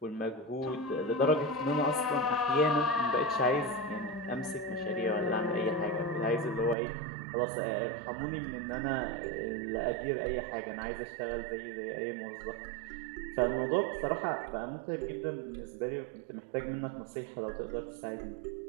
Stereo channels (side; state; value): left; drops out; at 6.8 s